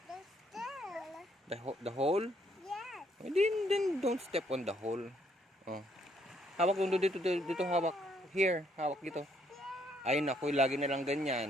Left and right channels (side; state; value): both; normal; correlation 0.69